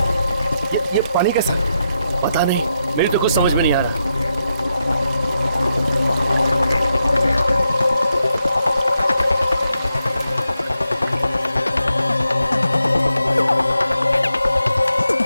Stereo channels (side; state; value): both; inverted; correlation -0.84